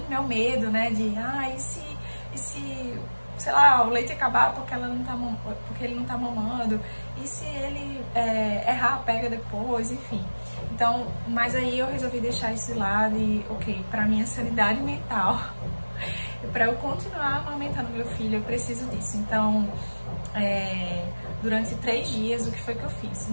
meu medo, né, de, e se sei lá, o leite acabar porque ele não tá mamando, e se ele errar, pega depois, enfim. Então, mas aí eu resolvi deixar isso de lado e, ok, pra minha sanidade mental, pra eu continuar amamentando meu filho, eu preciso disso. Então, durante 3 dias, o que foi que eu fiz?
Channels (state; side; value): inverted; both; correlation -1.00